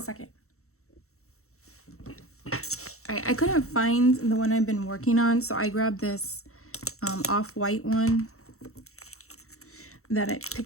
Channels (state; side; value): late; right; 0.63 ms